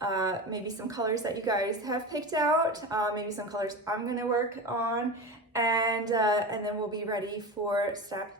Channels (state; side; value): normal; both; correlation 0.26